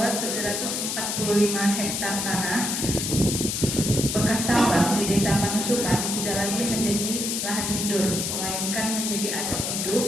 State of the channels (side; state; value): left; noise; hiss, 1 dB below the sound